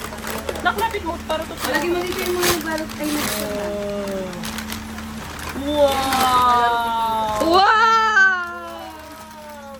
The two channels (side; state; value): both; identical; correlation 1.00